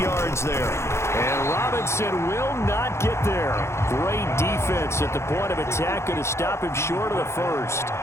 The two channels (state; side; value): late; right; 0.13 ms